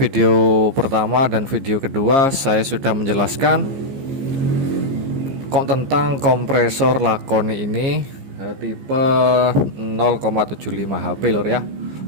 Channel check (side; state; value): left; late; 15 ms